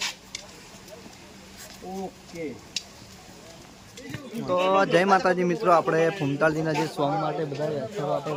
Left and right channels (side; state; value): both; identical; correlation 1.00